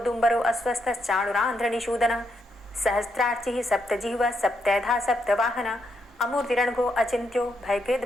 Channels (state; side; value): normal; both; correlation 0.79